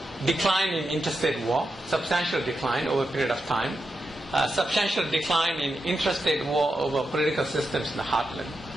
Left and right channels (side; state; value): both; normal; correlation 0.87